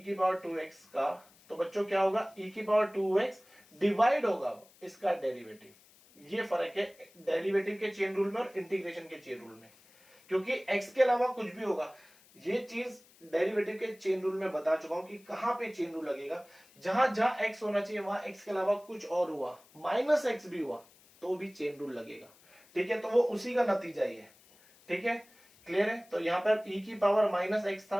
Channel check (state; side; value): noise; left; hiss, 27 dB below the sound